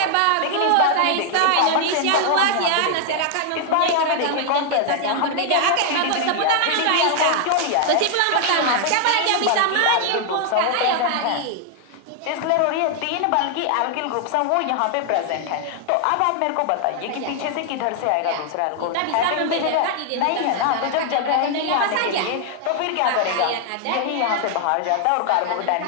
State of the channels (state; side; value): different; both; correlation 0.00